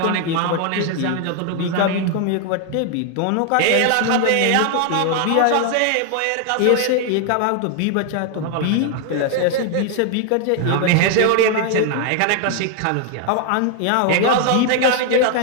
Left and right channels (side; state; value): both; different; correlation 0.00